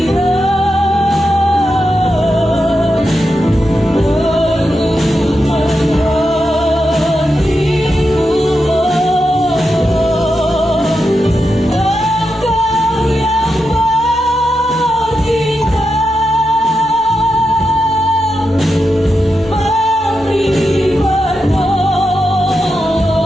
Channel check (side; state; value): both; normal; correlation 0.87